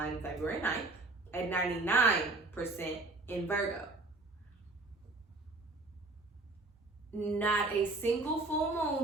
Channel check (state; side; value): quieter; left; 3.2 dB